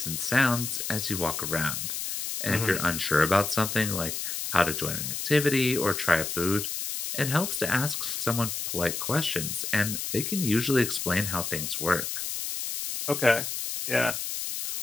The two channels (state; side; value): noise; left; hiss, 4 dB below the sound